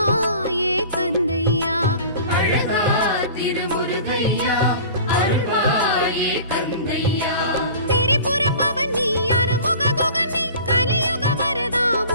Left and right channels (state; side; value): inverted; both; correlation -0.41